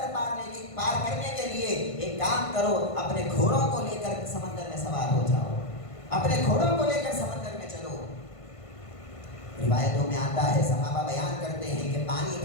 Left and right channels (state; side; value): late; right; 1.5 ms